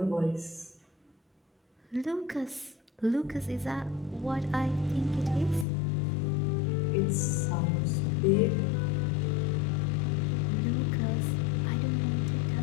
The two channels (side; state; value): right; drops out; at 5.7 s